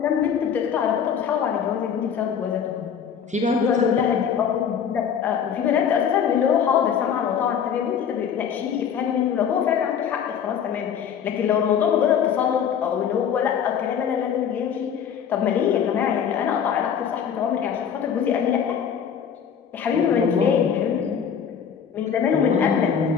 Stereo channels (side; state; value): right; quieter; 7.8 dB